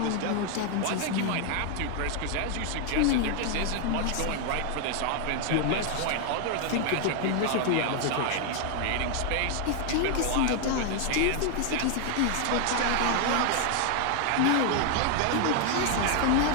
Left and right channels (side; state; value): both; different; correlation 0.00